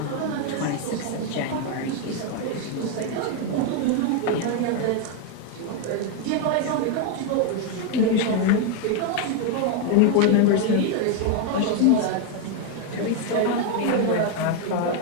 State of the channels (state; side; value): different; both; correlation 0.01